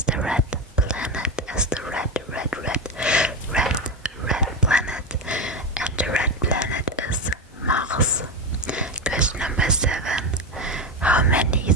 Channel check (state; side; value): normal; both; correlation 0.15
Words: the red planet? As the red planet. And the red planet is Mars. Question number 7. How many